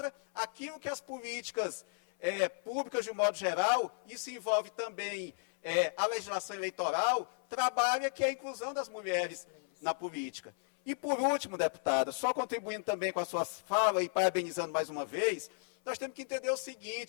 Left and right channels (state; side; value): silent; right; 55 dB below the other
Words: aquilo que as políticas públicas, de um modo geral, isso envolve também a legislação eleitoral, trabalha, que é a inclusão das mulheres na política. E, por último, deputada, só contribuindo também com a sua fala e parabenizando mais uma vez, nós temos que entender o